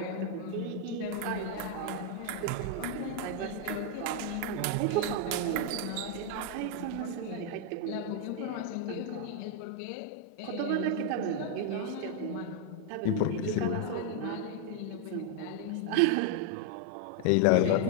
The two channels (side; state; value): both; different; correlation 0.00